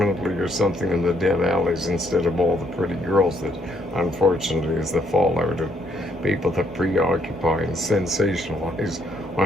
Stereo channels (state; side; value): normal; both; correlation 0.70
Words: or something in the dead alleys instead of all the pretty girls that unfortunately is the fallout of people that preoccupy and sensationalize